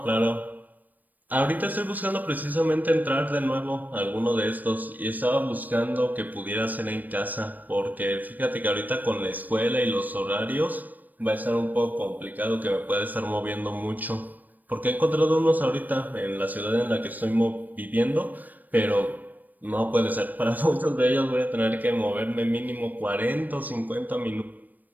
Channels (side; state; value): left; late; 0.085 ms